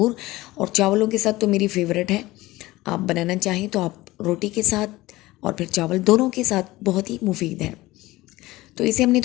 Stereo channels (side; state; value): right; quieter; 18.8 dB